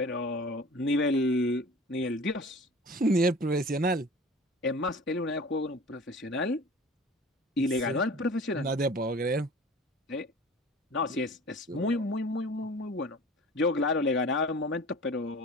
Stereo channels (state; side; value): normal; both; correlation 0.41